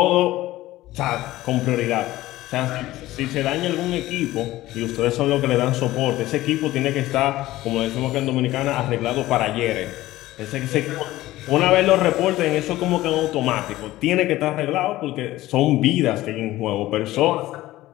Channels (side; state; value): right; quieter; 16.4 dB